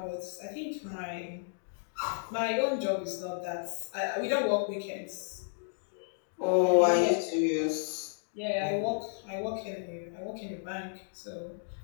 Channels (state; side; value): silent; right; digital silence